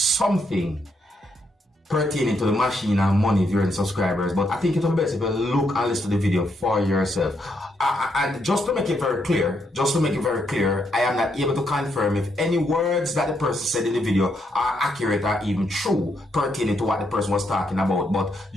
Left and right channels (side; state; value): both; normal; correlation 0.77